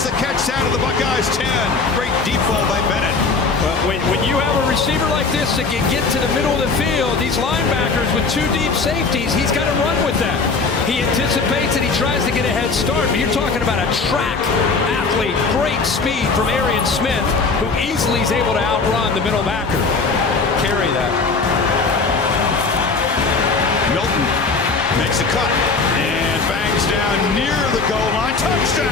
the catch out of the Buckeyes 10. Great deep ball by Bennett. Well, when you have a receiver like this that can get to the middle of the field, these linebackers with two deep safeties, he's got to run with that. He anticipates and he tries to get a head start, but you're talking about a track athlete, great speed from Arian Smith, who easily is able to outrun the middle backer. Carry that. Milton makes a cut and bangs down near the goal line.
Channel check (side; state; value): right; quieter; 4.3 dB